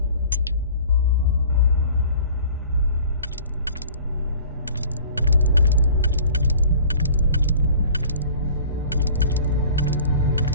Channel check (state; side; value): inverted; both; correlation -0.47